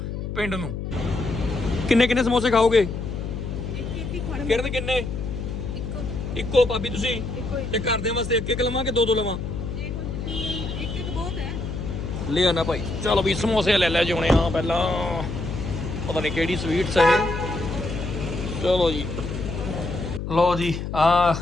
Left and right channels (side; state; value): left; noise; hum, 5 dB below the sound